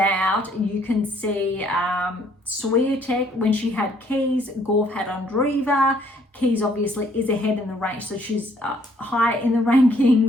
you can see Swiatek, when she had Keys, Gauff had Ondreva. Keys obviously is ahead in the range, so she's high in the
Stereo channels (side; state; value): both; normal; correlation 0.64